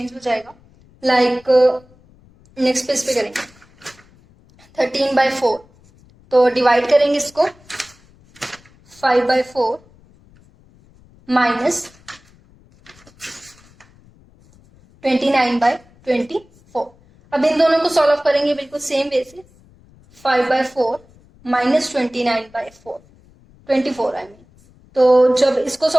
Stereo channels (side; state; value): left; noise; rumble, 28 dB below the sound